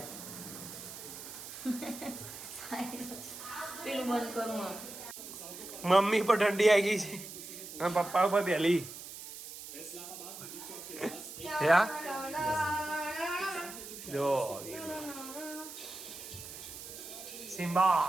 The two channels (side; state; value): right; noise; hiss, 12 dB below the sound